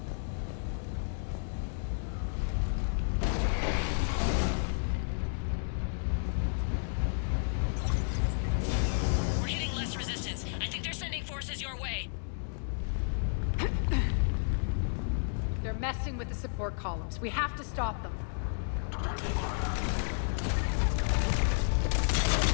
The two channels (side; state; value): right; silent; 56 dB below the other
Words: We're hitting less resistance. I think they're sending forces your way. They're messing with the support columns. We have to stop them.